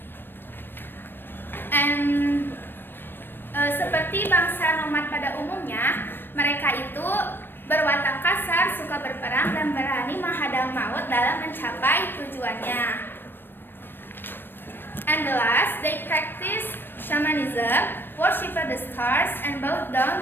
Seperti bangsa nomad pada umumnya, mereka itu berwatak kasar, suka berperang, dan berani menghadang maut dalam mencapai tujuannya. And the last, they practice shamanism, worship the stars, and bow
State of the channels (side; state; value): right; late; 0.097 ms